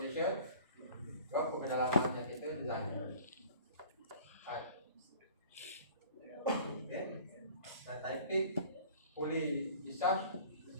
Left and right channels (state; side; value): inverted; both; correlation -0.46